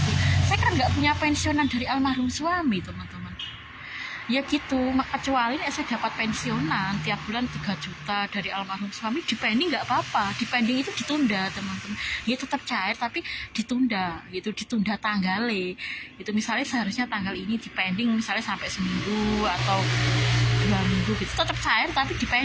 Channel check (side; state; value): both; identical; correlation 1.00